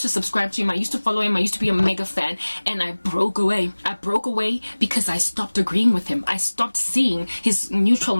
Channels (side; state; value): both; inverted; correlation -1.00